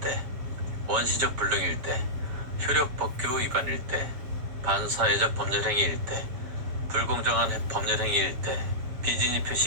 원시적 불능일 때, 효력법규 위반일 때, 반사회적 법률행위일 때, 불공정한 법률행위일 때, 비진위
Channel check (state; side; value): late; left; 7.2 ms